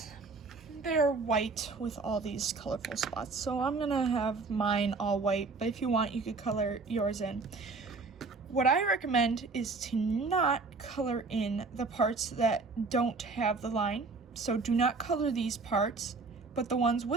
they're white with all these colorful spots. So I'm gonna have mine all white, but if you want, you could color yours in. What I recommend is to not color in the parts that don't have the line. So do not color these parts, but the ones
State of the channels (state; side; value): quieter; left; 4.0 dB